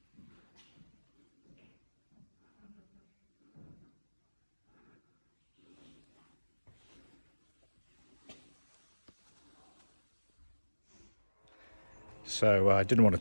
So I didn't want to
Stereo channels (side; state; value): both; inverted; correlation -1.00